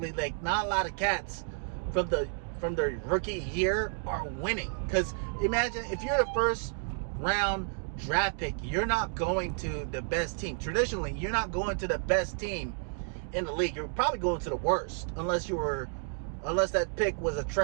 like not a lot of cats from the rookie year are winning. Because imagine if you're the first round draft pick, you're not going to the best team. Traditionally, you're not going to the best team in the league. You're probably going to the worst unless that pick was a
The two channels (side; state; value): left; silent; 57 dB below the other